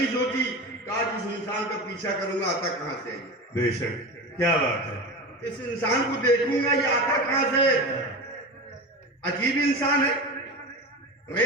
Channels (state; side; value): normal; both; correlation 0.26